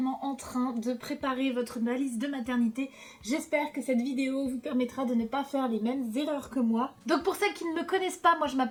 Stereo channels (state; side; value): identical; both; correlation 1.00